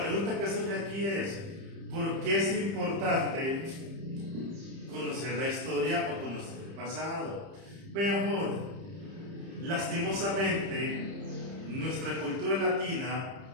que surge aquí es: ¿por qué es importante conocer la historia o conocer el pasado? Vean, jóvenes, lastimosamente, nuestra cultura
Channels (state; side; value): late; left; 30 ms